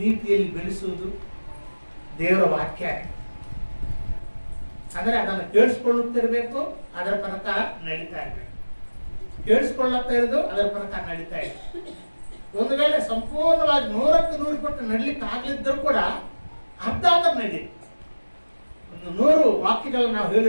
ನೀತಿಯಲ್ಲಿ ಬೆಳೆಸುವುದು ದೇವರ ವಾಕ್ಯ. ಅಂದರೆ ಅದನ್ನು ಕೇಳಿಸ್ಕೊಳ್ಳುತ್ತಿರಬೇಕು, ಅದರ ಪ್ರಕಾರ ನಡೀತಾ ಇರಬೇಕು. ಕೇಳಿಸ್ಕೊಳ್ಳುತ್ತಾ ಇರೋದು ಅದರ ಪ್ರಕಾರ ನಡೀತಾ ಇದೆ. ಒಂದು ವೇಳೆ ಸಂಪೂರ್ಣವಾಗಿ 100% ನಡಲಿಕ್ಕೆ ಆಗ್ಲಿದ್ದರೂ ಕೂಡ ಅರ್ಧ ನಡಿ. ಒಂದು 100 ವಾಕ್ಯಗಳನ್ನು ನಾವು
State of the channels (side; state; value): both; inverted; correlation -1.00